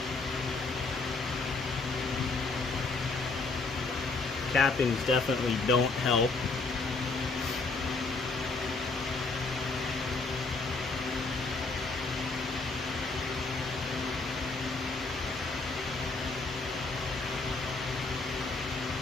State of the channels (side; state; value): right; quieter; 3.8 dB